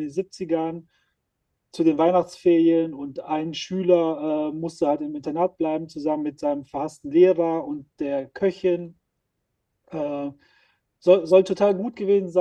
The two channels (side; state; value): both; identical; correlation 1.00